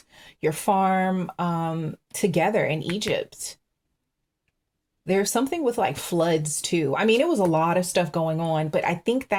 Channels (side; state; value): both; identical; correlation 1.00